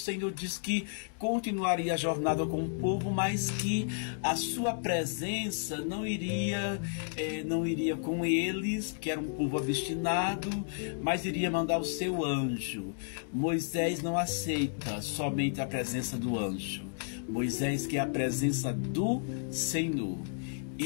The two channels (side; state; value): right; silent; digital silence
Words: diz que continuaria a jornada com o povo, mas que a sua presença não iria com eles, que era um povo obstinado, mas iria mandar o seu anjo. Moisés não aceita somente a presença do anjo. Moisés quer a presença do Senhor.